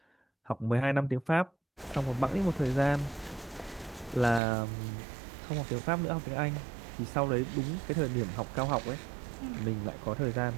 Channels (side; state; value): left; drops out; at 4.4 s